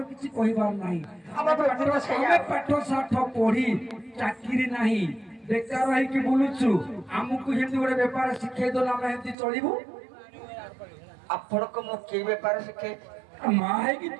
କିଛି କହିବାର ନାହିଁ। ଆମେ ପାଠ ସାଠ ପଢି ଚାକିରି ନାହିଁ, ବେକାର ହେଇକି ବୁଲୁଛୁ। ଆମକୁ ଯେମିତି ଗୋଟେ ବେପାର ଶିଖେଇ ଦେଲେ ଆମେ ଏମିତି ଚଳିବୁ। ଆପଣଙ୍କୁ ମୁଁ କି ବେପାର ଶିଖେଇ? ମା ହେଇକି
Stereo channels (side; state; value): left; drops out; at 9.3 s